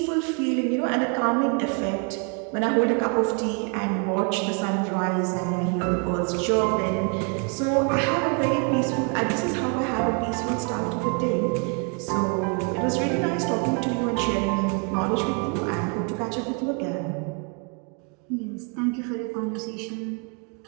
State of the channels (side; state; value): left; quieter; 36.5 dB